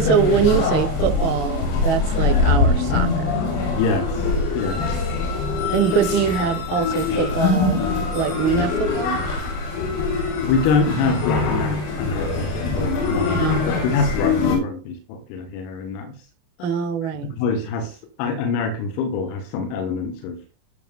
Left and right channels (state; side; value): late; right; 33 ms